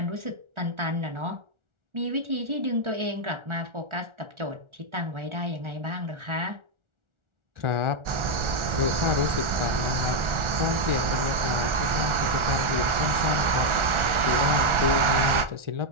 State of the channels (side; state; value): left; late; 1.4 ms